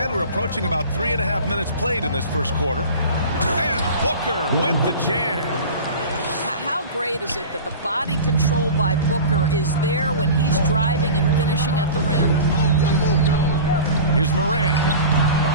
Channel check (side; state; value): both; inverted; correlation -0.35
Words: we're approaching about 3.5 minutes played in this first quarter. And Booker with the jam. How great is it that the body control by Booker is there when he's driving and finishing at the rim? Here's Morant.